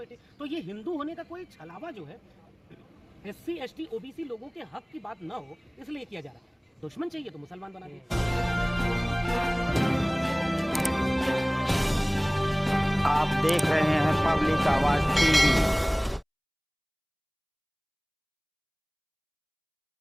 तो ये हिंदू होने का कोई छलावा जो है SC ST OBC लोगों के हक की बात न हो इसलिए किया जा रहा है। दुश्मन चाहिए तो मुसलमान बना दिए। आप देख रहे हैं पब्लिक आवाज TV।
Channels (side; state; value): both; identical; correlation 1.00